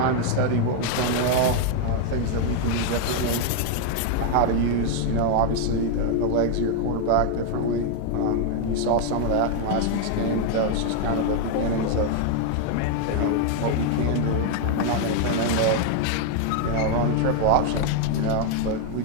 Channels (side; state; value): both; different; correlation 0.00